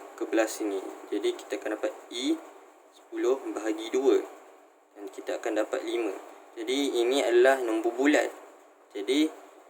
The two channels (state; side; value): identical; both; correlation 1.00